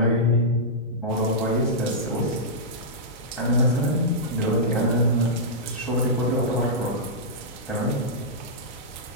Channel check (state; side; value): normal; both; correlation -0.12